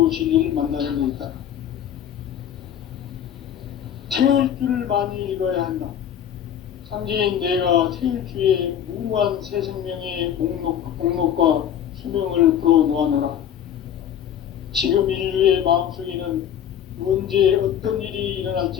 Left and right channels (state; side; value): quieter; right; 9.6 dB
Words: 진리를 만나는 데 있다. 태일 줄을 많이 읽어야 한다. 상제인 내가 태일주의 무궁한 새 생명의 목록과 수명을 불어놓아노라. 지금 인류의 마음속에는 언제 어떤 일이